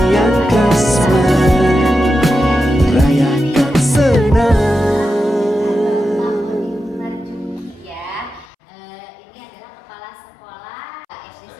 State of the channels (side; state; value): right; drops out; at 8.5 s